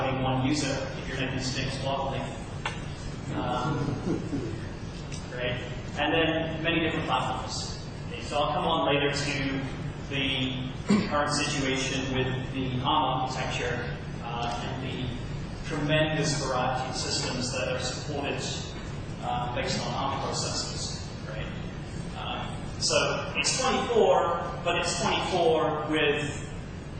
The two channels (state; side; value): identical; both; correlation 1.00